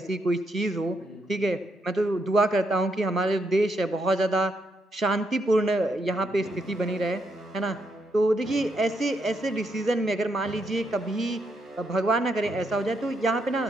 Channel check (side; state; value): both; normal; correlation 0.78